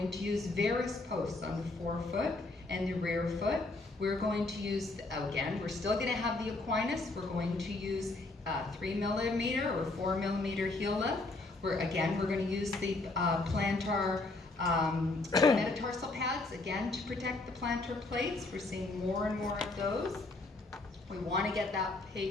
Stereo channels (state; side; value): quieter; right; 3.2 dB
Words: to use varus posts on the forefoot and the rear foot. We're going to use, again, we're still going to have the Aquinas. We're going to use 3mm or 4mm heel lift. We're going to use the plantar metatarsal pads, again, to protect the plantar plates. We're seeing more and more of those. We want to get that